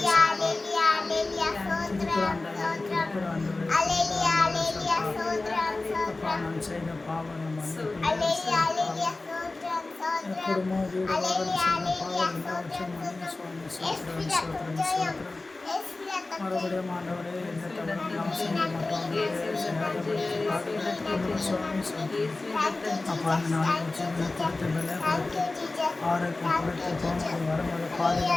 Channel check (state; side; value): quieter; right; 3.2 dB